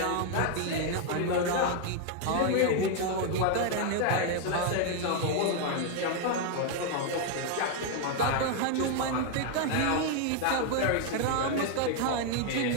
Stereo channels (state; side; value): different; both; correlation 0.00